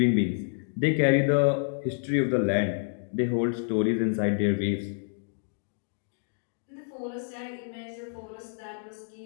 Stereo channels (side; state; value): right; silent; digital silence